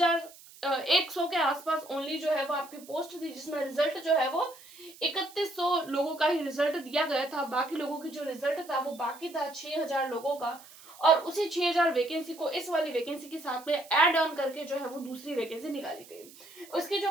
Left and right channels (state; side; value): noise; right; hiss, 21 dB below the sound